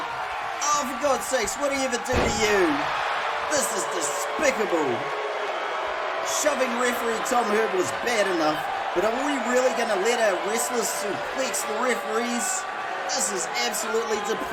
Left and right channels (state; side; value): identical; both; correlation 1.00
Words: Oh, for God's sakes, what do you ever do to you? This is despicable. Shoving referee Tom Herb was bad enough, but are we really going to let our wrestlers suplex the referees? This is absolutely